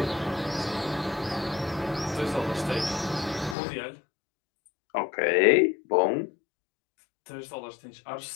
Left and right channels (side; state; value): right; drops out; at 3.6 s